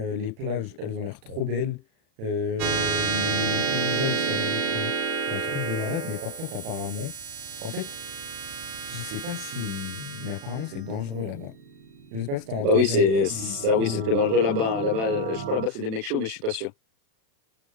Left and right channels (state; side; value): late; left; 36 ms